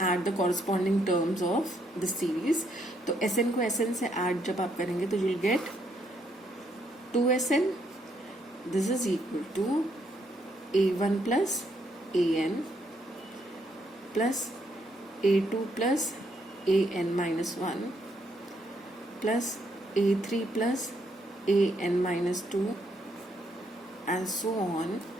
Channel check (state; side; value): normal; both; correlation 0.73